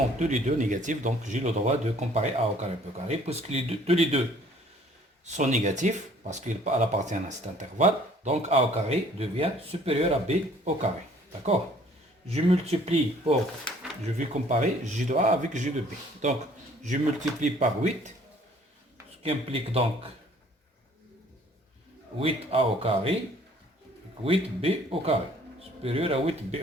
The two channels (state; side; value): normal; both; correlation 0.57